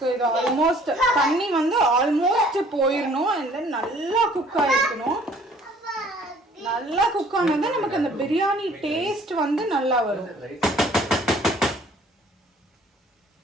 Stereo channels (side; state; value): both; normal; correlation 0.56